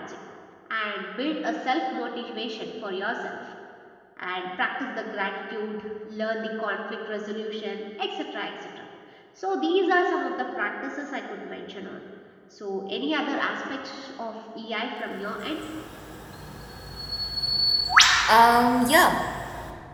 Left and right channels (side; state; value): both; identical; correlation 1.00